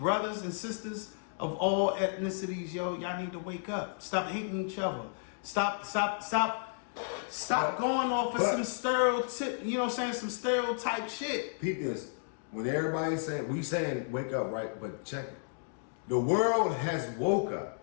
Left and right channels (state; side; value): silent; right; digital silence